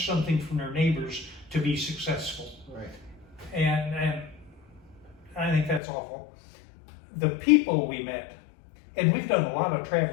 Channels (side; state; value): right; drops out; at 5.8 s